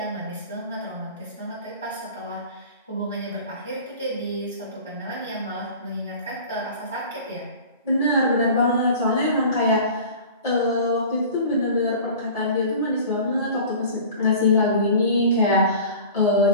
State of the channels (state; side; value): inverted; both; correlation -0.40